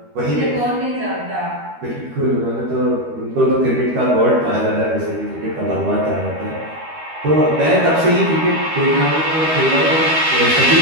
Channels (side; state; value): left; late; 13 ms